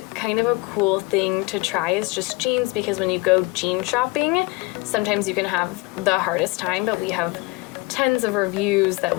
kind of a cool thing to try is just jeans, because when you go jean shopping, sometimes you can have the hardest time, but we have tons of reviews that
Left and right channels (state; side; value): quieter; right; 23.4 dB